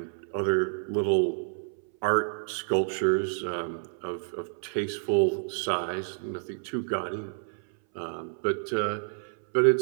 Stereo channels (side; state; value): left; silent; 59 dB below the other